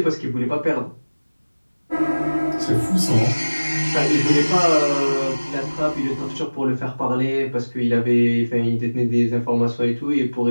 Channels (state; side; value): inverted; both; correlation -1.00